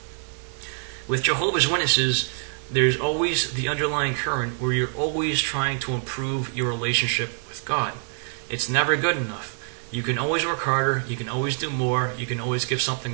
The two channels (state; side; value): silent; left; 62 dB below the other